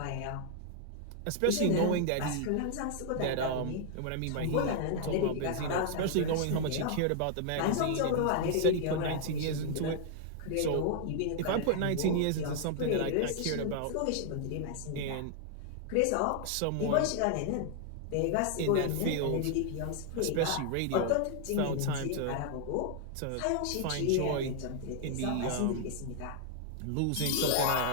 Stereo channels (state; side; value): different; both; correlation 0.00